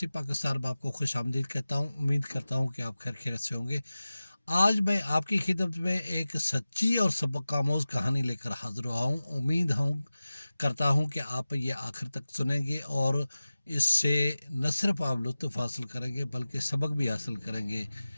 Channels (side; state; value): both; inverted; correlation -0.96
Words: पाकिस्तान में आपको खुश आमदीद कहता हूँ। उम्मीद करता हूँ कि आप खैर खैरियत से होंगे। आज मैं आपकी खिदमत में एक सच्ची और सबक आमोज़ कहानी लेकर हाजिर हुआ हूँ। उम्मीद हूँ करता हूँ कि आप ये आखिर तक सुनेंगे और इससे न सिर्फ आप लुत्फ़ हासिल करेंगे बल्कि सबक भी हासिल करेंगे।